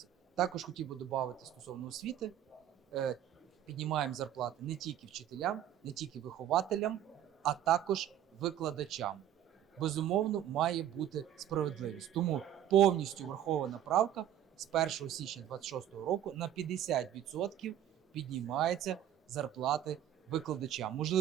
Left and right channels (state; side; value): quieter; left; 11.2 dB